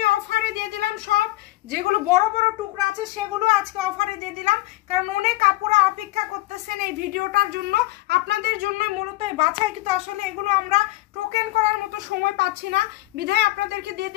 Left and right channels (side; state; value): right; quieter; 18.8 dB